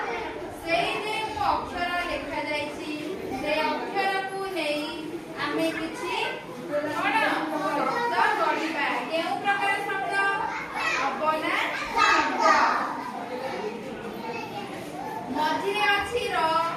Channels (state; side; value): identical; both; correlation 1.00